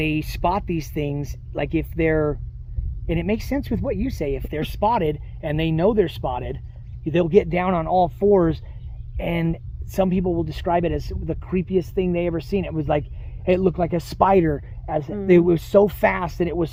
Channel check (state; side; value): identical; both; correlation 1.00